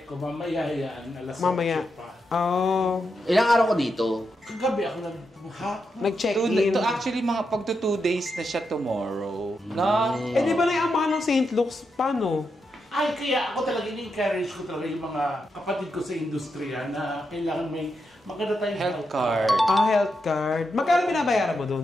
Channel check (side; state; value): both; normal; correlation 0.85